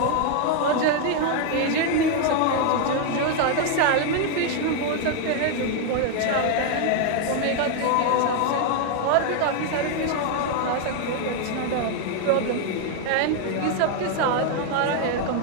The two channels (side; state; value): both; different; correlation 0.00